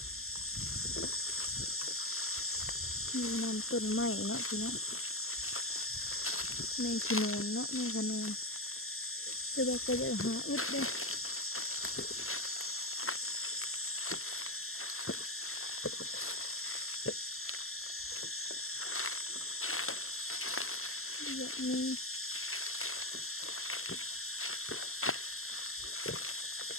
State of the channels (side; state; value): right; late; 0.62 ms